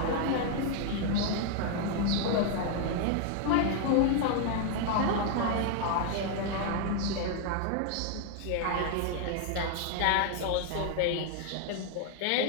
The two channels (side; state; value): both; different; correlation 0.00